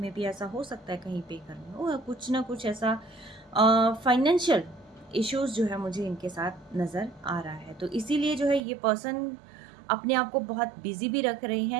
भी ऐसा हो सकता है कहीं पे करने हो, या कुछ ना कुछ ऐसा फाइनेंशियल इश्यूज़ जो है मुझे इनके साथ नज़र आ रहा है। तो इसीलिए जो है ये पर्सन अपने आप को बहुत बिज़ी भी रख रहे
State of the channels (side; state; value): left; drops out; at 8.6 s